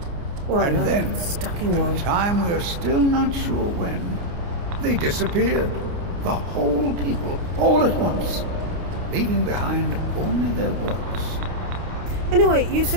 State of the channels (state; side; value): late; left; 29 ms